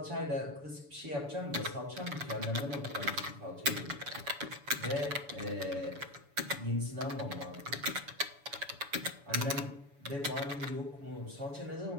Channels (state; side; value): late; left; 7.0 ms